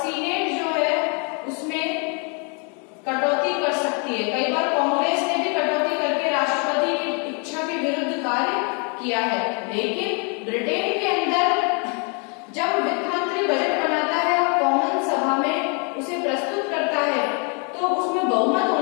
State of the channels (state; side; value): quieter; right; 36.2 dB